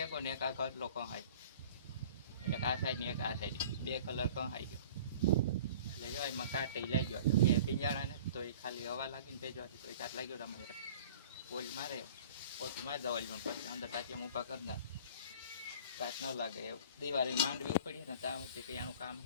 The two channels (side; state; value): both; inverted; correlation -0.45